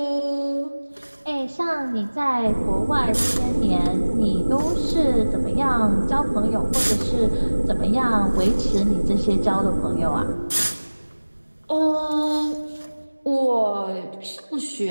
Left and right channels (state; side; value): inverted; both; correlation -1.00